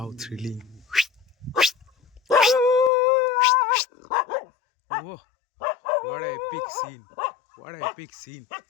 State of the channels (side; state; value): right; drops out; at 2.9 s